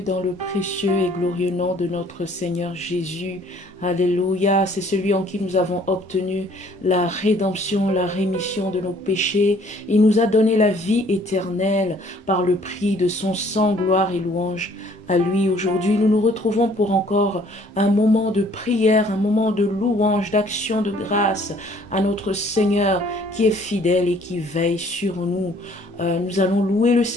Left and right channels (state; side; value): normal; both; correlation 0.59